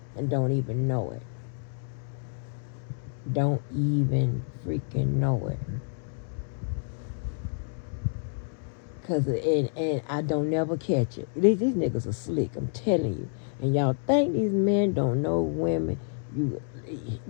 and don't even know it. Don't even freaking know it. And I don't never catch it. These niggas are slick, I'm telling you. And y'all think these men don't know women.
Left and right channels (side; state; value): right; silent; digital silence